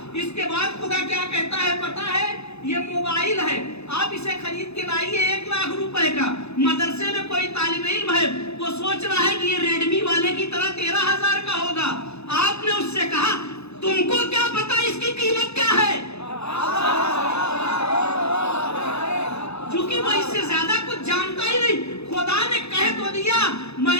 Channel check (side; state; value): right; late; 0.80 ms